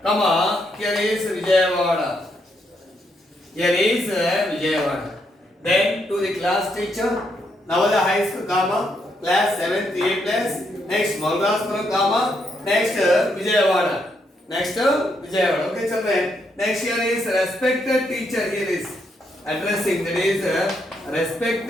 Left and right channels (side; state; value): both; normal; correlation 0.77